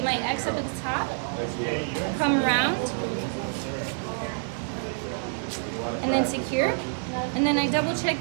my X up at the top, come around, and then secure. And then I double check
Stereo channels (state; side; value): silent; left; 60 dB below the other